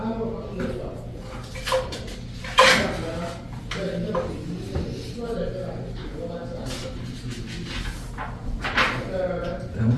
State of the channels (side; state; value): both; identical; correlation 1.00